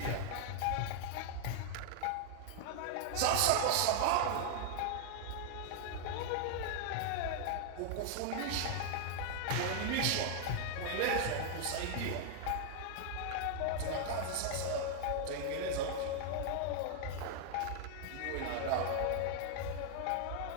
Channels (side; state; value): both; different; correlation 0.00